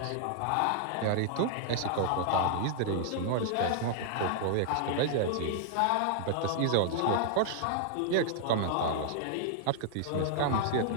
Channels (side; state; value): both; different; correlation -0.01